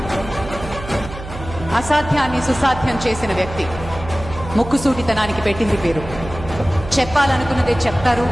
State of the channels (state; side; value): noise; right; hum, 11 dB below the sound